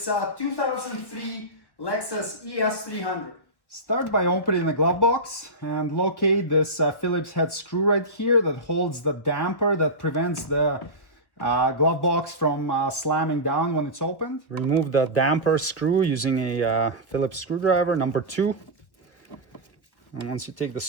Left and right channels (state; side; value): late; right; 1.2 ms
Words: 2003 Lexus ES300. Start by opening the glove box and locate this Phillips head screw right here that holds the damper that prevents the glove box from slamming down when it's opened. Remove the damper screw using a Phillips screwdriver number 2. And once you take the